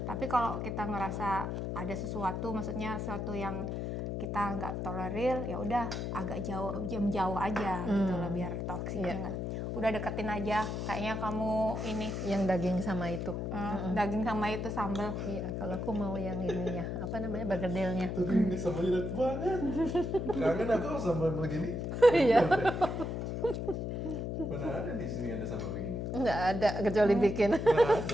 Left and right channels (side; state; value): left; noise; hum, 3 dB below the sound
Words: Tapi kalau kita ngerasa ada sesuatu, maksudnya sesuatu yang kita nggak tolerir, ya udah agak jauh aja gitu loh biar toksiknya nggak. Udah deketin aja, kayaknya kamu ini Yang daging sama itu. daging sama itu sambal. Iya, kalau aku mau yang ininya, apa namanya, bergedelnya. Tapi ini sambalnya enak banget. Kangen aku sambal begini. Iya. Mana ada di sini ada sambal begini? Nggak ada, kecuali bikin. Nggak